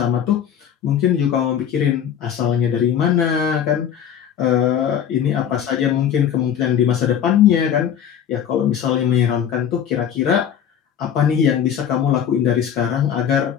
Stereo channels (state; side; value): quieter; right; 9.0 dB